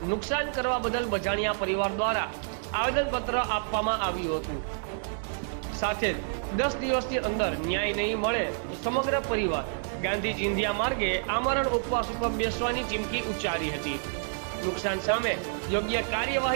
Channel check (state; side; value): silent; left; digital silence